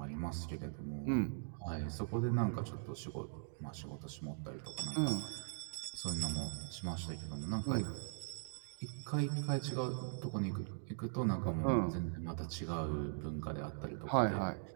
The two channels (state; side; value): silent; left; digital silence